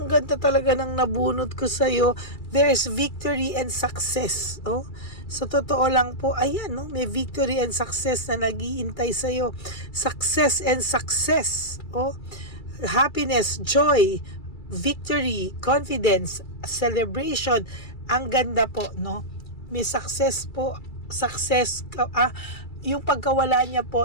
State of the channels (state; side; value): late; right; 2.3 ms